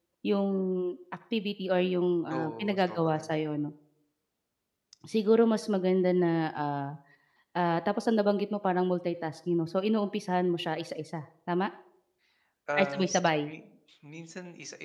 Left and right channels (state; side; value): identical; both; correlation 1.00